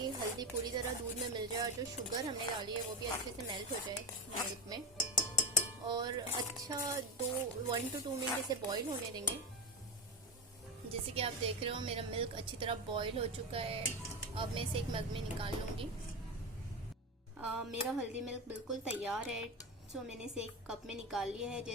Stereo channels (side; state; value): both; normal; correlation 0.16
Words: हल्दी पूरी तरह दूध में मिल जाए और जो शुगर हमने डाली है वो भी अच्छे से मेल्ट हो जाए मिल्क में। और अच्छा 1 to 2 मिनट इसे बॉईल होने देंगे। जैसे कि आप देख रहे हो मेरा मिल्क अच्छी तरह बॉईल हो चुका है। अब मैं इसे एक मग में निकाल लूँगी। मेरा हल्दी मिल्क बिल्कुल तैयार है। सो मैंने इसे एक कप में निकाल लिया है।